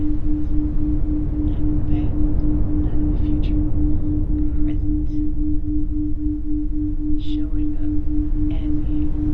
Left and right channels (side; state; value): both; identical; correlation 1.00